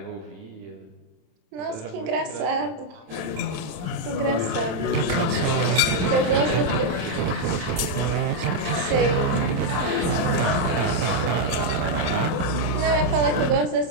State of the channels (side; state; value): left; late; 27 ms